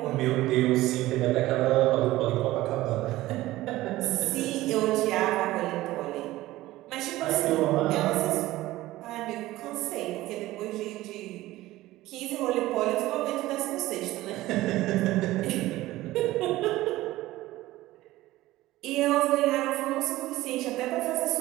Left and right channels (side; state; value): left; quieter; 17.0 dB